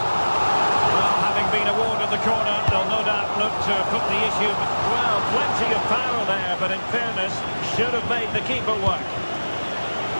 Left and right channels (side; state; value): both; inverted; correlation -1.00